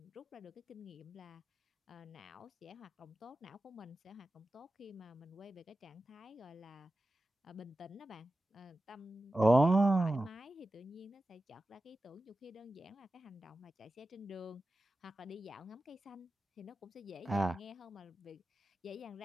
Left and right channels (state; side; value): normal; both; correlation 0.94